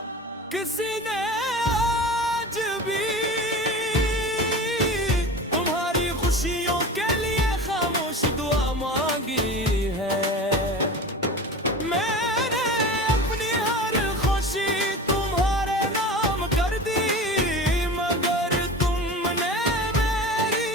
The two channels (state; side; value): normal; both; correlation 0.34